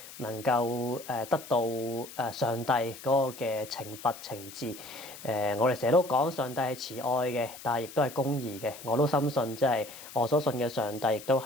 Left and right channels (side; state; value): left; noise; hiss, 15 dB below the sound